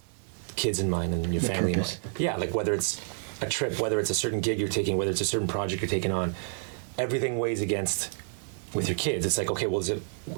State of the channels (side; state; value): left; silent; digital silence